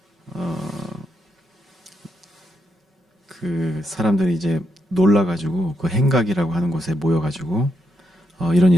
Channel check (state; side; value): normal; both; correlation 0.80